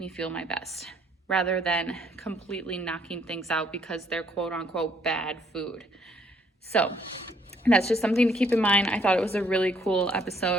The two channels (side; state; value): both; normal; correlation 0.66